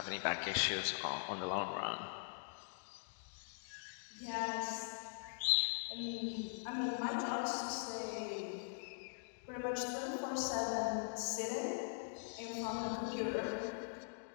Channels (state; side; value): silent; right; digital silence